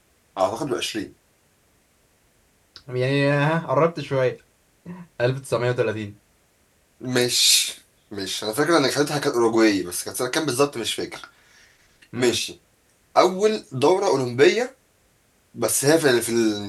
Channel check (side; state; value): both; identical; correlation 1.00